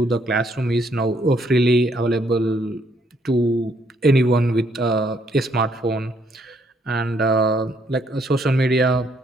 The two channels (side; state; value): both; normal; correlation 0.69